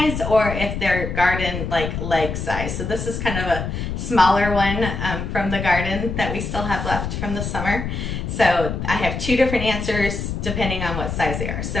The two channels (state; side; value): noise; left; rumble, 4 dB below the sound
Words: or if they're garden like leg size. So this is kind of a smaller one from the garden that we still have left from the summer. So I have two different answers depending on what size they are.